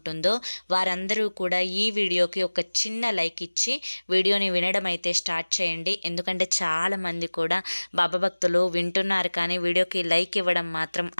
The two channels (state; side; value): inverted; both; correlation -1.00